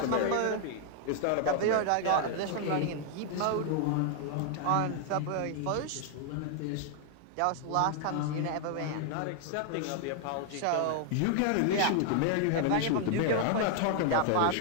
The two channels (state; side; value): different; both; correlation 0.00